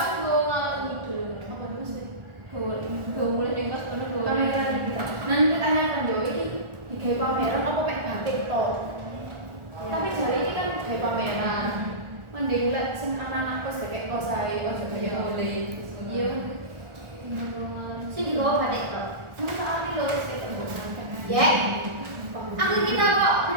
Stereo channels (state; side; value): late; left; 1.4 ms